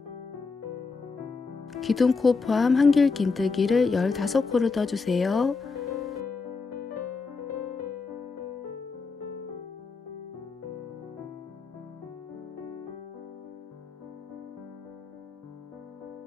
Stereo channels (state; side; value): quieter; right; 4.5 dB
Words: 기둥코 포함 한길긴뜨기를 15코를 떠주세요.